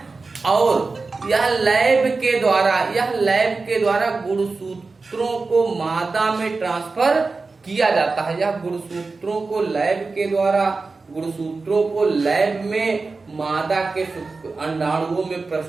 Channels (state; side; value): quieter; left; 4.0 dB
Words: और यह लैब के द्वारा गुणसूत्रों को मादा में ट्रांसफर किया जाता है। यह गुणसूत्रों को लैब में मादा के अंडाणुओं में